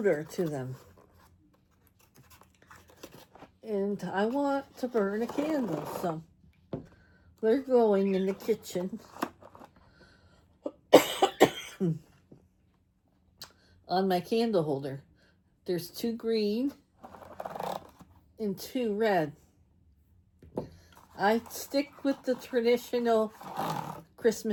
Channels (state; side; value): identical; both; correlation 1.00